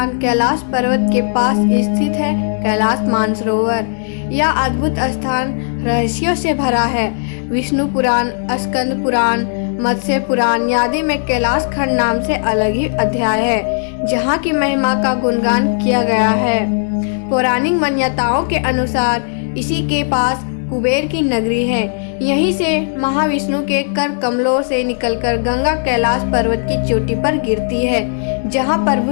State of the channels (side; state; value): right; silent; 66 dB below the other